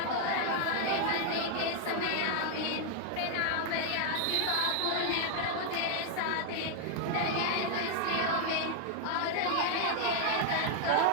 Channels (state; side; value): different; both; correlation 0.00